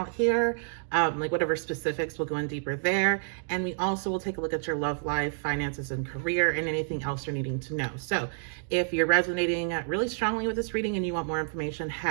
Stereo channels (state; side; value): silent; left; digital silence